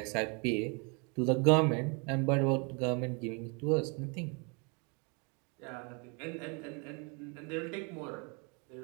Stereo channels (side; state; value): left; quieter; 33.7 dB